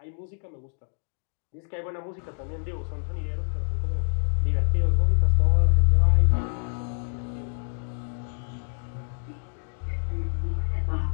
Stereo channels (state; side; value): silent; right; digital silence